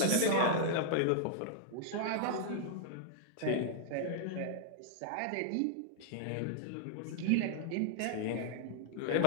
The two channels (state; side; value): different; both; correlation -0.01